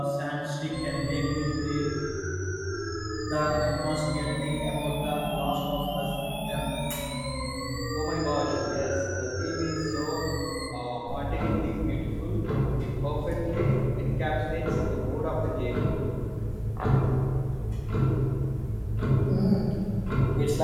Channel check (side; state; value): both; identical; correlation 1.00